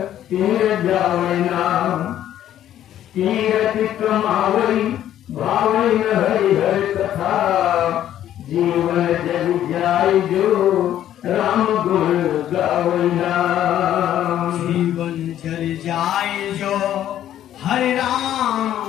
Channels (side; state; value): right; quieter; 11.6 dB